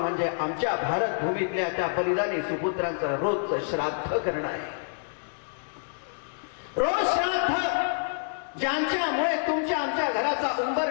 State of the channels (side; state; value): right; silent; 60 dB below the other